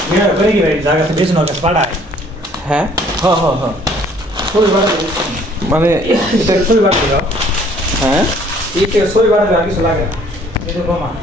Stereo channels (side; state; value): both; normal; correlation 0.58